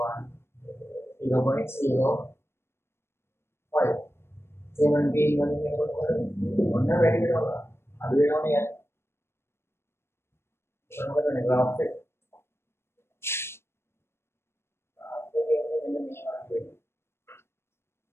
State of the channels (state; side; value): late; right; 0.12 ms